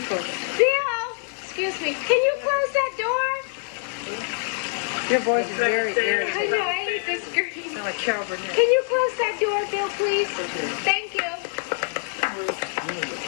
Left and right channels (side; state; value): right; silent; 62 dB below the other